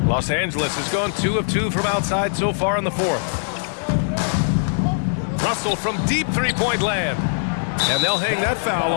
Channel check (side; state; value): right; silent; 65 dB below the other